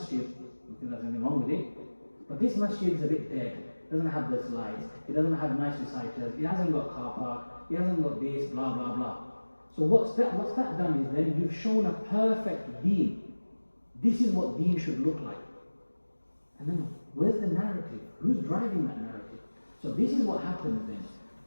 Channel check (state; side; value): inverted; both; correlation -1.00